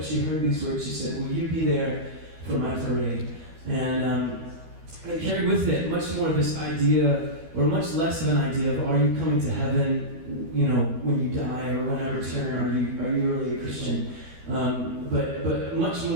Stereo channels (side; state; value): left; late; 12 ms